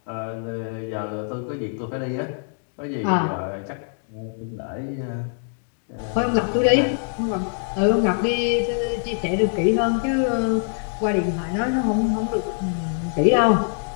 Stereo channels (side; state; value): right; silent; 63 dB below the other